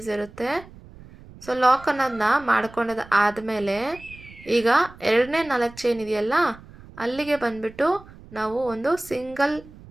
ಇರುತ್ತೆ. ಸೊ ಲಾಕ್ ಅನ್ನೋದನ್ನ ಮಾಡ್ಕೊಂಡದು ಆದಮೇಲೆ ಈಗ 2ನೇ 4 ಚೈನ್ ಇದೆಯಲ್ಲ ಅಲ್ಲಿಗೆ ಬಂದುಬಿಟ್ಟು ನಾವು ಒಂದು ಸಿಂಗಲ್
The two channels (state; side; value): noise; right; rumble, 20 dB below the sound